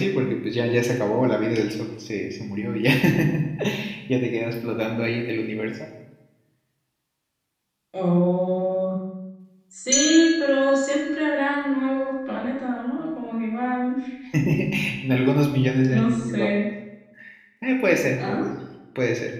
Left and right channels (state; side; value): identical; both; correlation 1.00